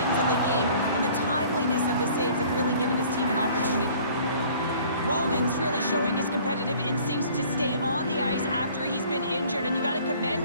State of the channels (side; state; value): both; inverted; correlation -0.52